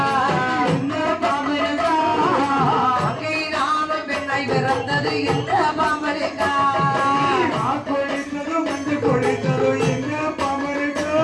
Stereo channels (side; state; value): both; identical; correlation 1.00